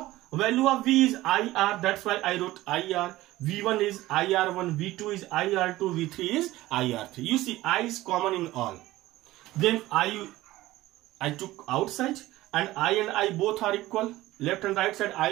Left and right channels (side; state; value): left; quieter; 17.0 dB